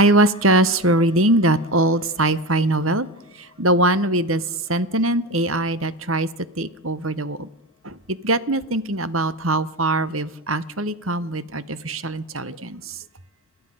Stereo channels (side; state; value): both; normal; correlation 0.23